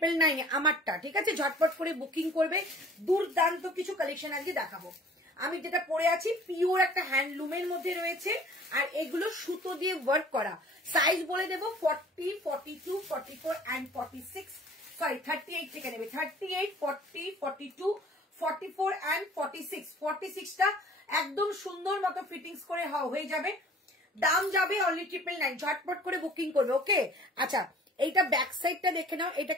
আমারটা। ঠিক আছে, ঝটপট করে বুকিং করবে। দুর্দান্ত কিছু কালেকশন আজকে দেখাবো। আমি যেটা পরে আছি পিওর একটা হ্যান্ডলুমের মধ্যে রয়েছে, আর এগুলো সুতো দিয়ে ওয়ার্ক করা। সাইজ বলে দেবো 40, 42, 44 and 46। সরি 38 থেকে নেবে, 38, 40, 42, 44 and 46। 46টা একদম সুন্দর মতো ফিটিংস করে হয়ে যাবে। দাম যাবে অনলি 999। ঝটপট করে বুকিং করবে। ওকে, আচ্ছা এইটা ব্যাক সাইডটা দেখে নাও। এটা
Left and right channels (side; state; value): both; normal; correlation 0.50